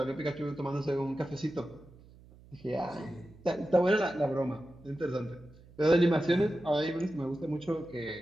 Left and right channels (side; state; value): right; noise; hum, 23 dB below the sound